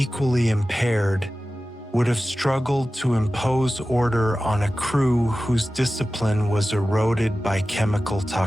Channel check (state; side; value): normal; both; correlation 0.95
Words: impaired, would have struggled to impose order on a crew whose discipline was eroded by chemical